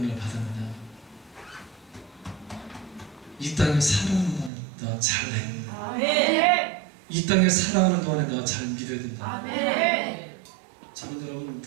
받았느냐? 이 땅에 살아가는 동안에 내가 잘 해야 된다. 아멘. 이 땅에 살아가는 동안에 내가 잘 믿어야 된다. 아멘. 저는 여러분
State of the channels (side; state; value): left; drops out; at 4.5 s